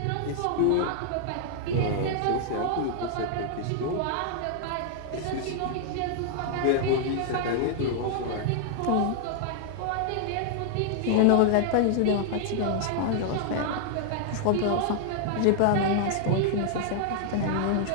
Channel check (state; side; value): different; both; correlation -0.01